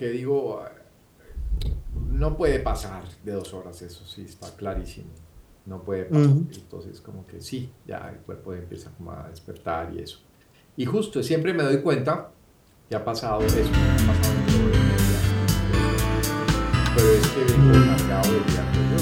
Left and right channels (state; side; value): identical; both; correlation 1.00